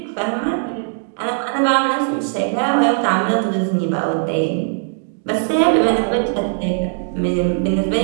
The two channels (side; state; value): left; silent; digital silence